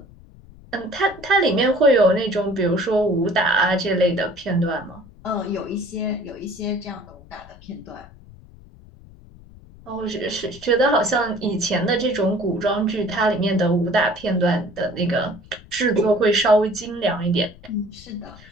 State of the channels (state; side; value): noise; left; rumble, 22 dB below the sound